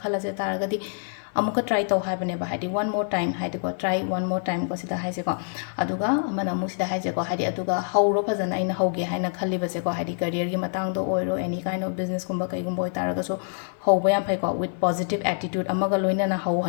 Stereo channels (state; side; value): silent; right; 56 dB below the other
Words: khalase taragadi amuka try taw haibane ba haidi one more time haidi ko try one more time ko sida haise ko aduga amana amu sida haise ko haidi aduga hauro fazana aina hauge haina khaliba se ko haidi career gi matang do oiro any kind of business kumba kai gumbo taraga so hauba yam phai ko with positive attitude amaga loina na hau